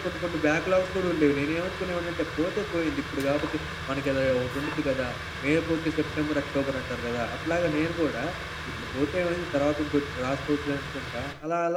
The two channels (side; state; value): both; identical; correlation 1.00